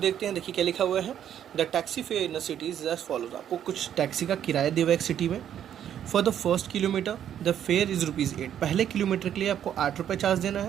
हैं। देखिए क्या लिखा हुआ है, the taxi fare in the city is as follows. आपको कुछ टैक्सी का किराया दिया हुआ है एक सिटी में। For the first kilometre the fair is ₹8, पहले किलोमीटर के लिए आपको 8 रुपये चार्ज देना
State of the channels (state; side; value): quieter; left; 9.9 dB